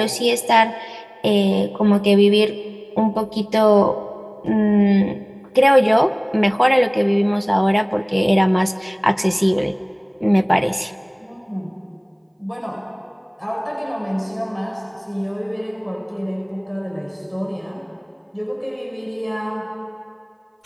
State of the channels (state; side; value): identical; both; correlation 1.00